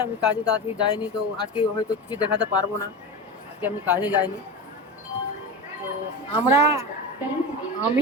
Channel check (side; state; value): both; normal; correlation 0.24